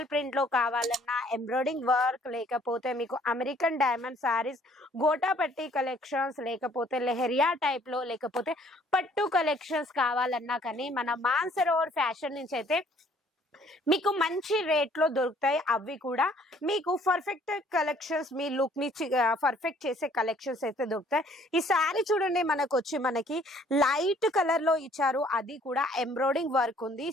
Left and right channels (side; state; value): both; normal; correlation 0.60